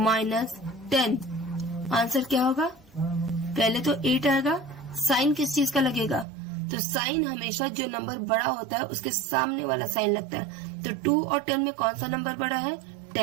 10 आंसर क्या होगा? पहले तो 8 आएगा। साइन किस चीज का लगेगा? तो साइन हमेशा जो नंबर बड़ा होता है उसके सामने वाला साइन लगता है। तो 2 और 10 में कौन सा नंबर बड़ा है?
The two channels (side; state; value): left; drops out; at 6.2 s